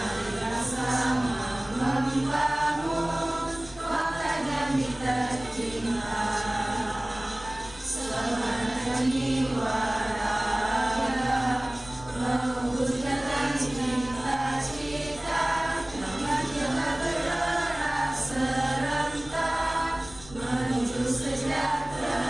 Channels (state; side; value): noise; left; rumble, 18 dB below the sound